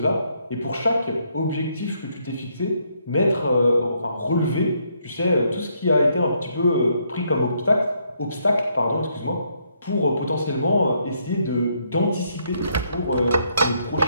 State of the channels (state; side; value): inverted; both; correlation -0.73